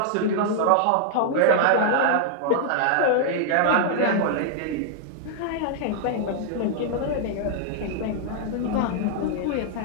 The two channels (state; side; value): different; both; correlation -0.01